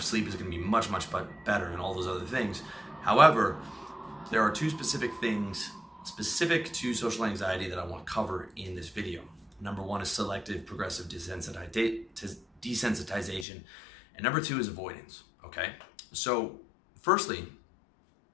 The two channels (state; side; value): drops out; right; at 13.5 s